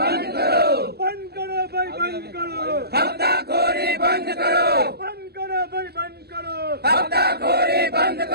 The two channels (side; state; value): left; late; 0.47 ms